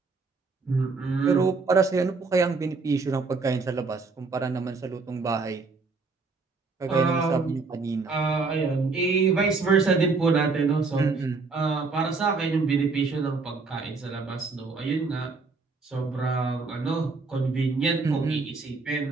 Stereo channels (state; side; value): quieter; left; 4.2 dB